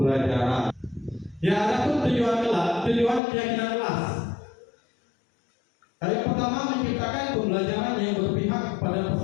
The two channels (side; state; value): right; drops out; at 3.2 s